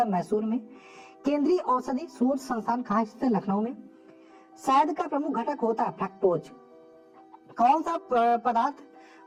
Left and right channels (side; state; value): both; identical; correlation 1.00